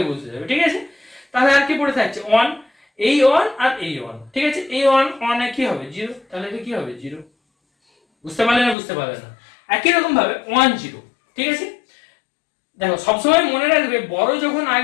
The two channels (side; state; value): right; drops out; at 8.8 s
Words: বসে যাবে, ঠিক আছে। তাহলে আর কি পড়ে থাকছে 1, এই 1 আর এই 1, ঠিক আছে, এই 1 1 এ কি হবে 0, তাহলে এটা কি হবে 0, বুঝতে পারলে না, বুঝতে পারলে না। একই রকম ভাবে 1 0, ঠিক আছে, দেখো সবসময় মনে রাখবে বড় যখন